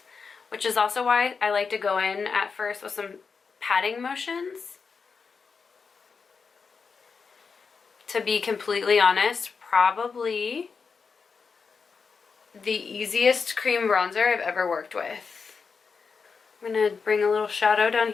which is also why I like to go in at first with some patting motions. To be completely honest, probably the easiest cream bronzer I've ever worked with. I'm gonna bring a little shadow down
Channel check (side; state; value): right; quieter; 5.3 dB